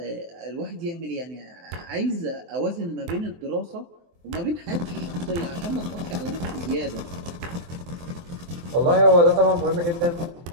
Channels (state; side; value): late; left; 23 ms